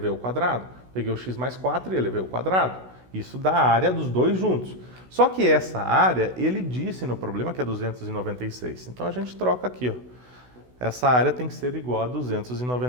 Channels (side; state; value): left; late; 16 ms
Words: o quadrado, peguei o x mais 4 e elevei o quadrado. Isso dá a área dos dois juntos. Só que essa área, ele disse no problema que é 296. Então a gente troca aqui, ó. Essa área tem que ser igual a